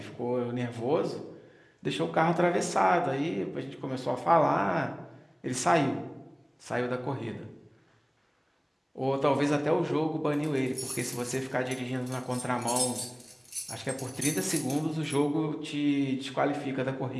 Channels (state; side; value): identical; both; correlation 1.00